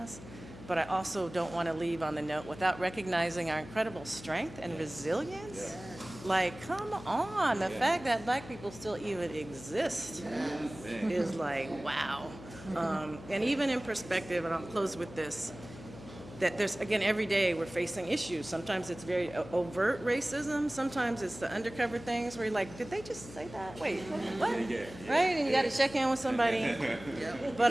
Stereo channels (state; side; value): noise; left; hum, 16 dB below the sound